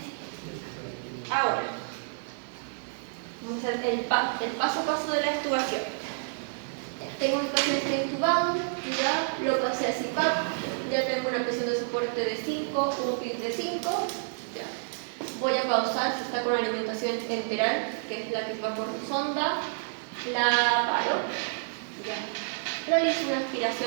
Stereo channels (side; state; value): left; silent; digital silence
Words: Ahora, vamos a hacer el paso a paso de la extubación. Tengo mi paciente intubado, ya lo pasé a CPAP, ya tengo una presión de soporte de 5, un PIB de 5. Ya. Voy a pausar si está con alimentación enteral, que es la que va por sonda, la paro. Ya. Realizo una